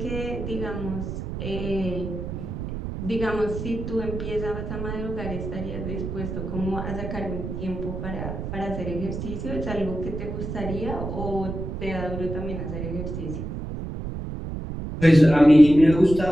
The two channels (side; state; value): right; noise; rumble, 6 dB below the sound